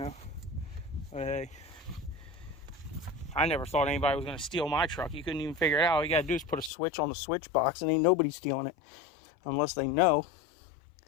But hey, I never thought anybody was going to steal my truck. You couldn't even figure it out. All you got to do is put a switch on the switch box, and ain't nobody stealing it unless they know.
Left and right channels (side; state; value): right; drops out; at 6.7 s